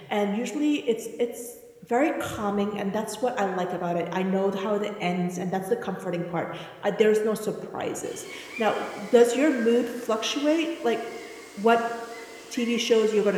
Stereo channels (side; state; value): both; identical; correlation 1.00